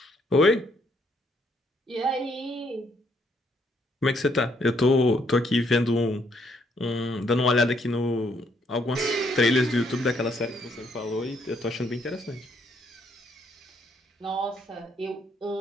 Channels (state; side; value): normal; both; correlation 0.71